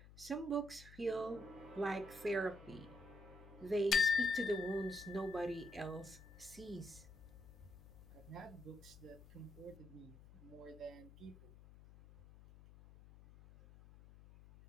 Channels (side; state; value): left; noise; hum, 19 dB below the sound